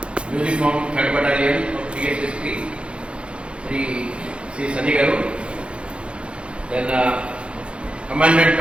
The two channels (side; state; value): left; late; 0.057 ms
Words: uniform 3rd Battalion of TSSP Shri Sunny గారు. Then commandant